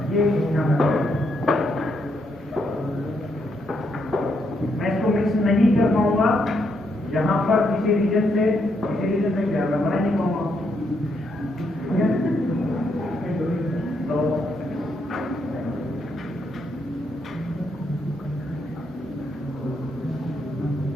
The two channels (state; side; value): normal; both; correlation 0.77